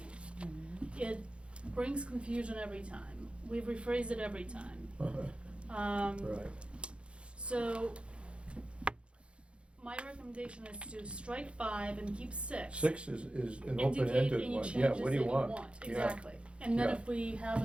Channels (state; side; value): late; left; 0.058 ms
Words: It brings confusion every time. We've rephrased it every time. Right. So my recommendation is to strike 5 and keep 6. 6 is an Indicate open-ended any one. changes Yeah, what do you that want? Yeah. Exactly. And then Yeah. if we have